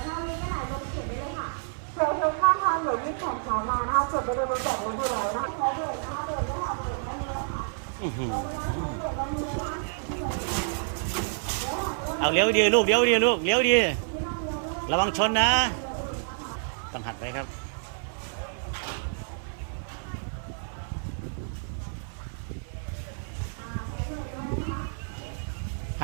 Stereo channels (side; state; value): left; silent; digital silence